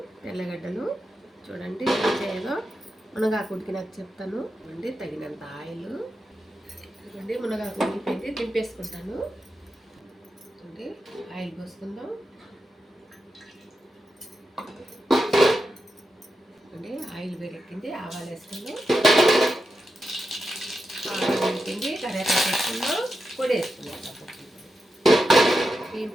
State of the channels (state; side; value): normal; both; correlation 0.88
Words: తెల్లగడ్డలు. చూడండి ఏం చేయాలో మునగాకు ఉడికినాక చెప్తాను. అండి తగినంత ఆయిల్. చూడండి మునగాకు ఉడికిపోయింది, దింపేసుకుంటాను. చూడండి ఆయిల్ పోసుకుందాం. చూడండి ఆయిల్ వేడెక్కింది, ఆవాలు వేసుకుందాం. ఆవాలు వేడికింది, కరివేపాకు వేసుకుందాం. పొడి వేసుకుందాం. బియ్యం